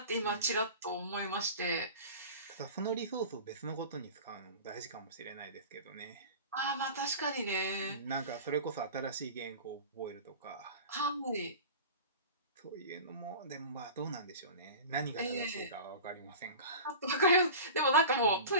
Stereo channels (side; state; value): both; inverted; correlation -0.35